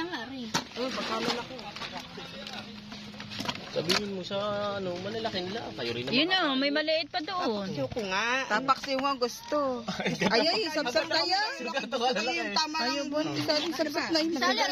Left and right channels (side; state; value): both; identical; correlation 1.00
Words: nga rin. Sabihin mo sa malalaki nila. Kayo rin naman. Yun o, may maliit pa doon. Ayoko nga. Tapaksi mo gusto. Ay, sabsab na yan. Yung tama lang. Sabsab na yun.